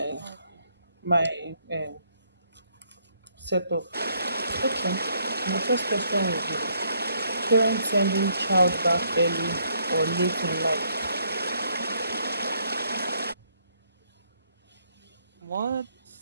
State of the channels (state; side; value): inverted; both; correlation -0.70